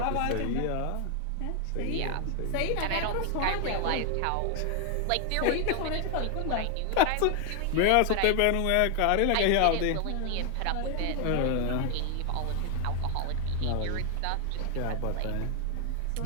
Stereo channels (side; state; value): both; different; correlation 0.00